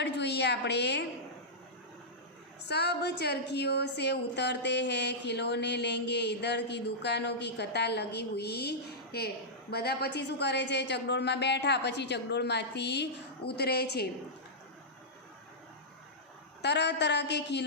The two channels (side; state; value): both; normal; correlation -0.12